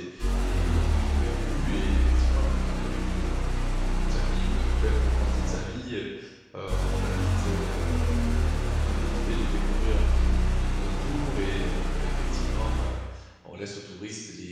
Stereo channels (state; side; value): identical; both; correlation 1.00